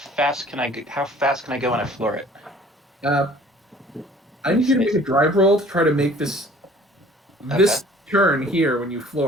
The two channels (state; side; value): normal; both; correlation 0.51